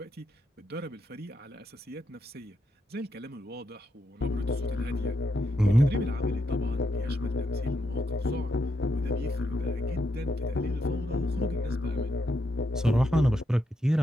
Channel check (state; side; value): normal; both; correlation 0.81